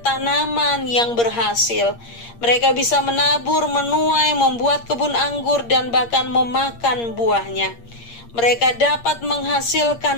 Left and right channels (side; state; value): right; late; 8.6 ms